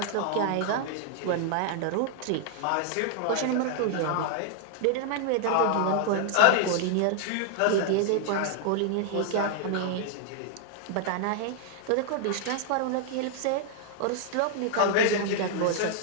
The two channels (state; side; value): different; both; correlation 0.00